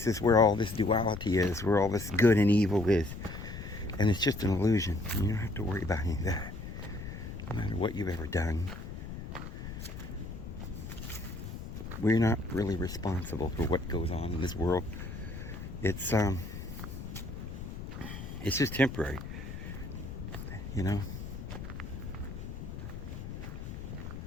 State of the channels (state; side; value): noise; left; rumble, 9 dB below the sound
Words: where all this duality is, where all this good and evil is. And it's just an illusion. You don't have to worry about any of that. No matter what you've ever done. We're not really responsible for what goes on in this world. It's just temporary.